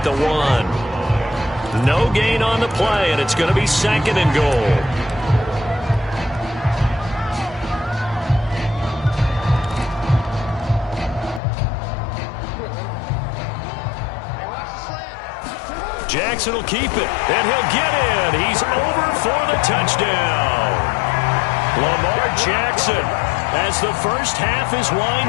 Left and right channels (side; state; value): right; drops out; at 11.4 s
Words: the 1. No gain on the play, and it's going to be 2nd and goal. Jackson will keep it, and he'll get in. He's over for the touchdown. Lamar Jackson, as the first half is